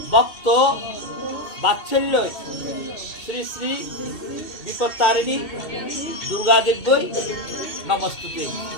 ভক্ত বাৎসল্যই শ্রী শ্রী বিপত্তারিণী দুর্গাদেব্যই নমস্তুতে।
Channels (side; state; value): right; late; 2.6 ms